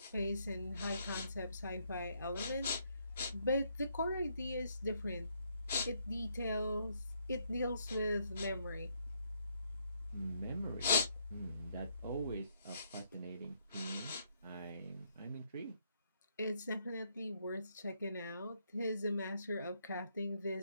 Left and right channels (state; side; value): inverted; both; correlation -0.73